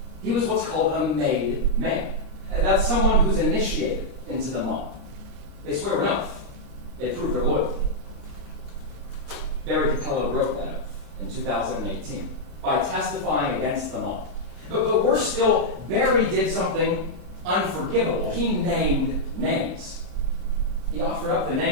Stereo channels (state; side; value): late; left; 26 ms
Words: He was what's called a made man. That's someone who's initiated into the mob. They swear an oath. They prove their loyalty. Barry Capello broke that oath in 2018 by testifying against the mob. But worse still, Barry did something unforgivable. He named names. He offered up the